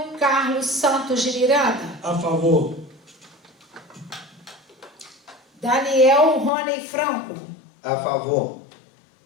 Carlos Santos de Miranda. A favor. Daniel Rony Franco. A favor.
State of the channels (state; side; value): drops out; right; at 6.5 s